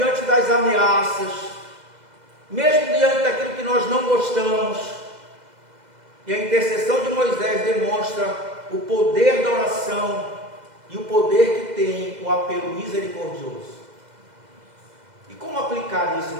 das ameaças, mesmo diante daquilo que nós não gostamos. E a intercessão de Moisés demonstra o poder da oração e o poder que tem o apelo misericordioso. E como aplicar isso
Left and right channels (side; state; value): left; late; 2.0 ms